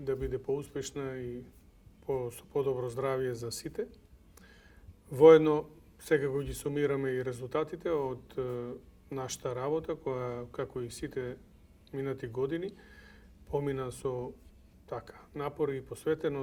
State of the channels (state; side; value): identical; both; correlation 1.00